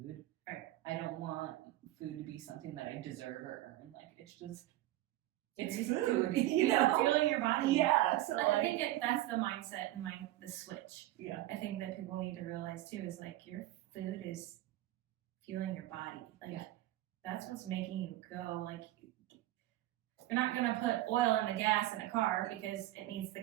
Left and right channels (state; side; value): quieter; left; 15.7 dB